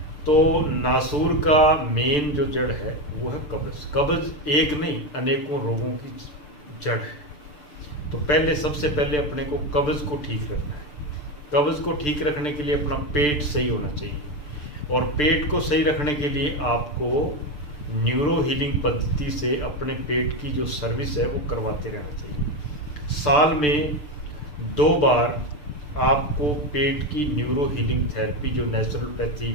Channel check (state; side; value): late; right; 6.8 ms